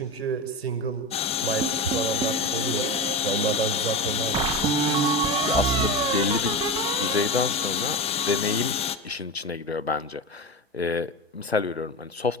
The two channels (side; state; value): both; normal; correlation 0.22